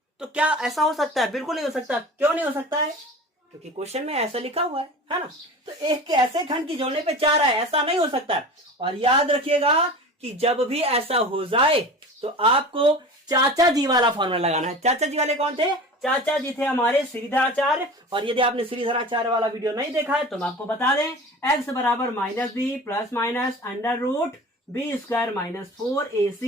तो क्या ऐसा हो सकता है? बिल्कुल नहीं हो सकता। क्यों नहीं हो सकता है? क्योंकि क्वेश्चन में ऐसा लिखा हुआ है ना? तो 1 के ऐसे खंड की जोड़ने पे 4 है, ऐसा नहीं हो सकता। और याद रखिएगा कि जब भी ऐसा हो जाए तो आपको चाचा जी वाला फॉर्मूला लगाना है। चाचा जी वाले कौन थे? चाचा जी थे हमारे श्रीधराचार्य। और यदि आपने श्रीधराचार्य वाला वीडियो नहीं देखा है तो मैं आपको बता दें, x बराबर -b plus minus √b² -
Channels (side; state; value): both; normal; correlation 0.36